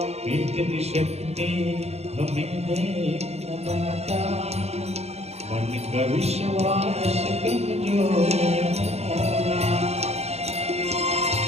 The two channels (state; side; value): late; left; 0.31 ms